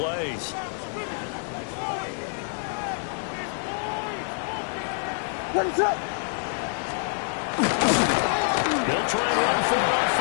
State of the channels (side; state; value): right; silent; 61 dB below the other